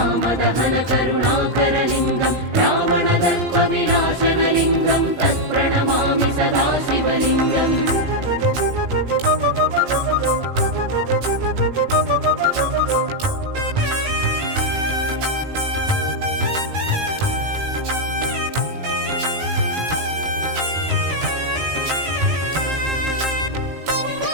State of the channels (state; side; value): late; left; 17 ms